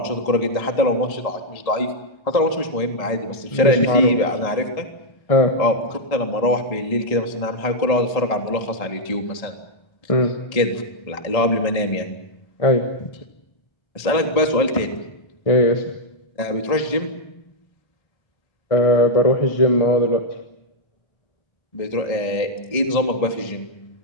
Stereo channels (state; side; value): late; right; 1.7 ms